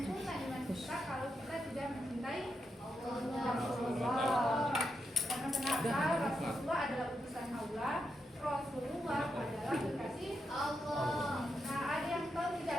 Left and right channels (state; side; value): normal; both; correlation 0.84